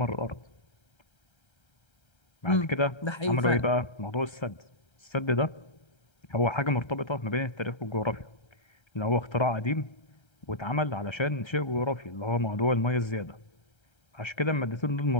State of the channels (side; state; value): right; late; 1.3 ms